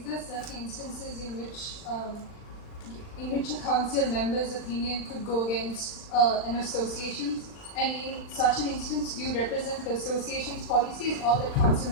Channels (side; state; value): right; late; 40 ms